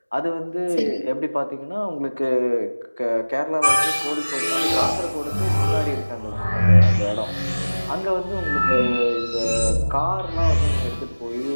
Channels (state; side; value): inverted; both; correlation -1.00